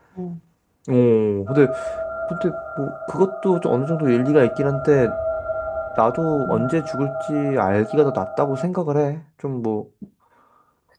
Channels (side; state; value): both; identical; correlation 1.00